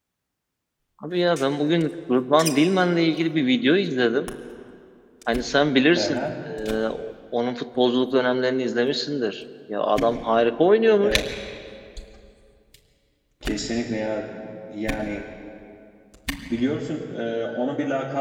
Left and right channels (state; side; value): identical; both; correlation 1.00